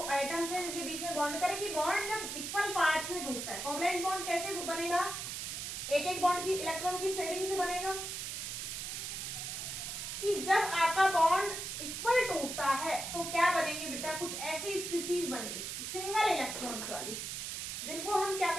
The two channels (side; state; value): right; noise; hiss, 5 dB below the sound